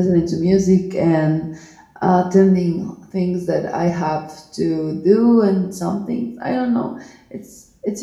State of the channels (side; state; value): both; identical; correlation 1.00